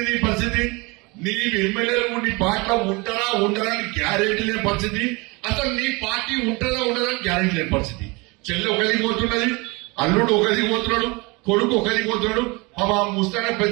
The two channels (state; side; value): quieter; left; 26.7 dB